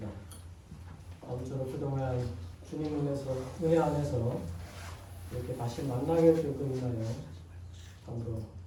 아무쪼록 그동안 주님 은혜 안에서 이렇게 다시 만나게 되고 있나요? 참으로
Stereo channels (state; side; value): identical; both; correlation 1.00